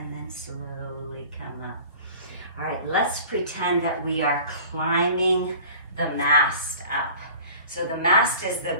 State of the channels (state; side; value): inverted; both; correlation -0.43